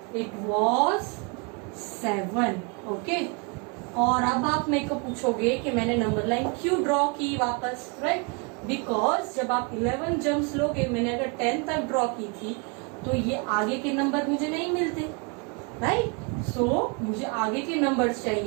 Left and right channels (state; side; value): quieter; left; 33.4 dB